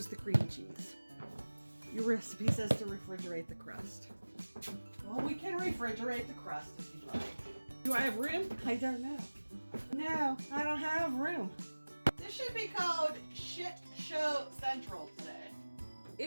the cream cheese. Your recipe says to refrigerate the crust. Well, we can refrigerate the crust if you like. Do I have room? I don't know. No, I don't have room. This should be called Shit Show Central today.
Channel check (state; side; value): inverted; both; correlation -1.00